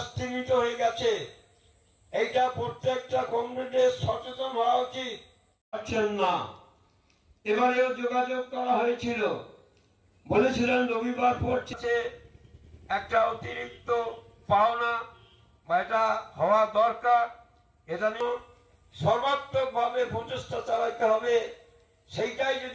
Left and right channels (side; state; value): both; identical; correlation 1.00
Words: স্থগিত হয়ে গেছে। এইটা প্রত্যেকটা কংগ্রেসের সচেতন হওয়া উচিত। না, এবারেও যোগাযোগ করা হয়েছিল, বলেছিলেন রবিবার পড়ছে একটা অতিরিক্ত পাওনা বা এটা হওয়া দরকার, এটা নিয়ে সর্বাত্মক ভাবে প্রচেষ্টা চালাতে হবে। সেইটাই